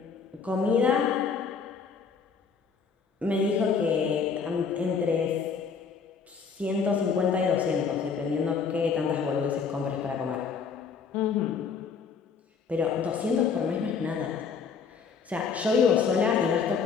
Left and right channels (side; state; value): right; quieter; 5.8 dB